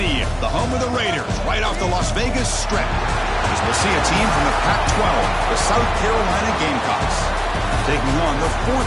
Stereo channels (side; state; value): both; identical; correlation 1.00